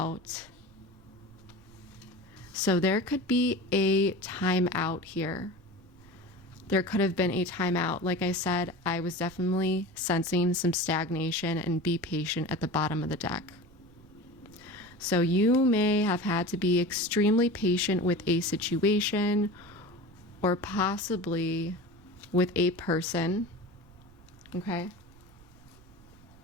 So there could be a time out here. There could have been a timeout. Like I said, I was definitely sensing some stagnation, and be patient at the bottom of the deck. So you may have had to be extremely patient with a situation, or possibly with a person, okay?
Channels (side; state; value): right; noise; rumble, 25 dB below the sound